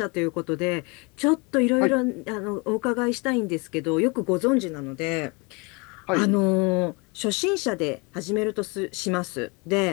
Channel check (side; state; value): right; quieter; 29.3 dB